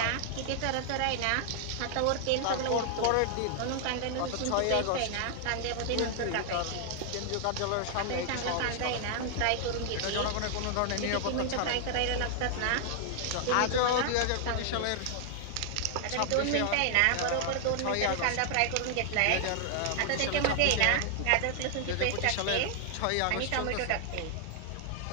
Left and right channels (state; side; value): different; both; correlation 0.00